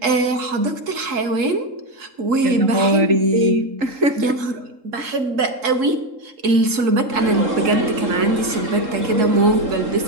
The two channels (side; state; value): left; late; 3.7 ms